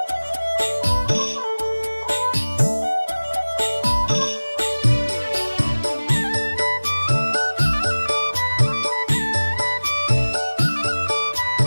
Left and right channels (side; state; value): both; inverted; correlation -1.00